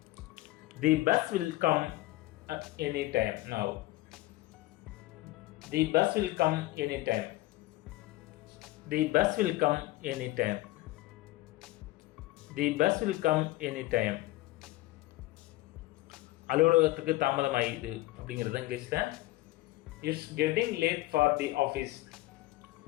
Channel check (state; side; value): quieter; right; 18.3 dB